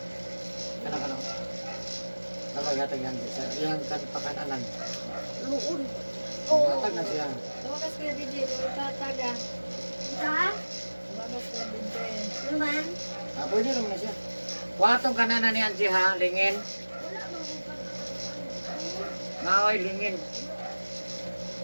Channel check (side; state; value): both; inverted; correlation -1.00